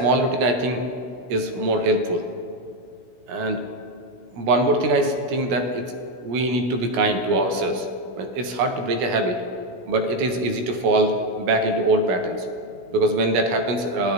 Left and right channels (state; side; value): late; left; 16 ms